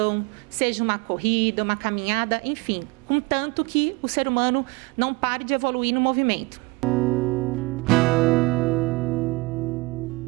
seja uma corrida, uma caminhada, enfim, contanto que o ser humano não pare de evoluir no movimento.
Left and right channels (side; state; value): left; quieter; 24.3 dB